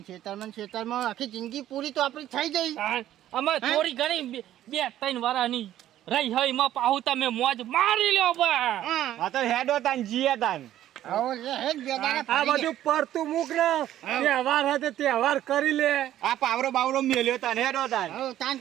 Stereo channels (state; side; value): quieter; left; 12.6 dB